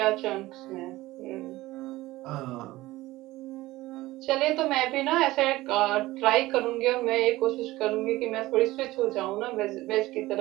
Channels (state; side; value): quieter; left; 18.1 dB